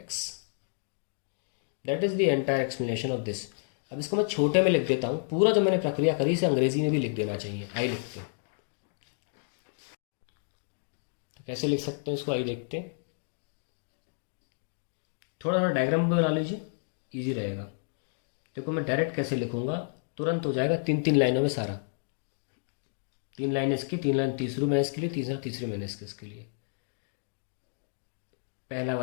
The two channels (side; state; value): right; silent; digital silence